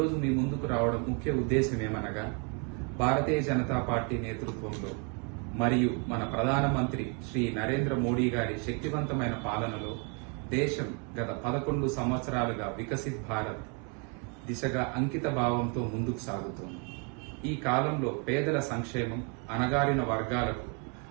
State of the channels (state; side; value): quieter; left; 34.2 dB